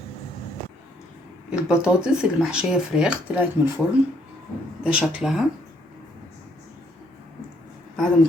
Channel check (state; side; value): normal; both; correlation 0.68